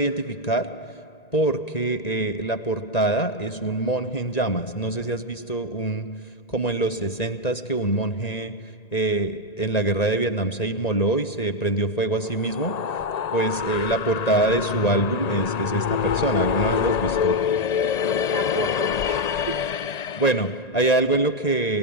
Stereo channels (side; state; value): right; late; 1.9 ms